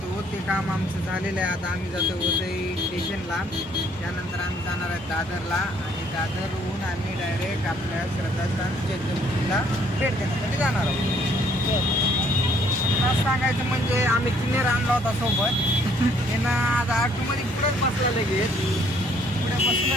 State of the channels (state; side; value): normal; both; correlation 0.64